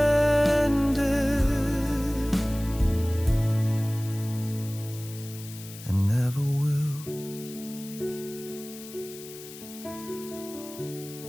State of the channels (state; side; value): noise; left; hiss, 15 dB below the sound